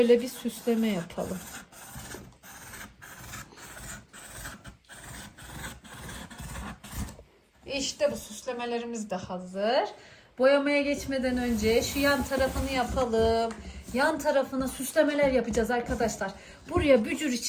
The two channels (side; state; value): both; identical; correlation 1.00